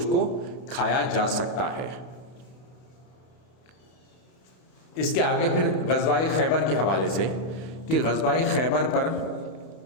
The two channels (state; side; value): late; right; 32 ms